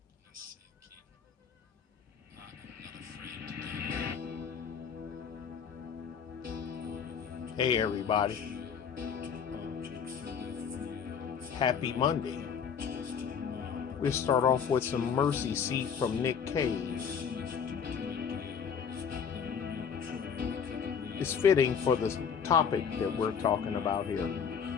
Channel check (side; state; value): right; quieter; 6.9 dB